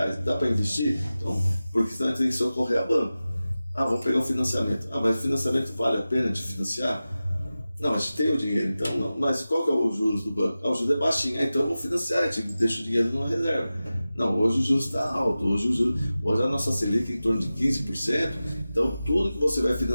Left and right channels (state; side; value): inverted; both; correlation -0.95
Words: dá para investir? Então, porque senão a gente tem que socorrer a banco. Vamos pegar um financiamento. Mas o financiamento vale a pena de financiar? Não, a gente tem o dinheiro, então não. Mas qual que é o juros do banco? O juros é baixinho, então vamos financiar, a gente deixa o dinheiro numa reserva. Não, hoje o juros está alto, hoje a nossa Selic é em torno de 15%, então tudo que você vai